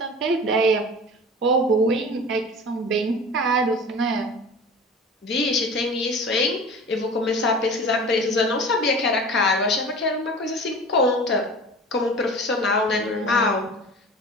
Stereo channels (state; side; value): normal; both; correlation 0.37